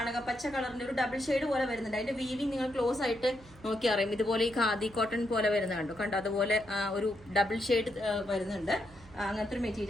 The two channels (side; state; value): right; noise; hum, 22 dB below the sound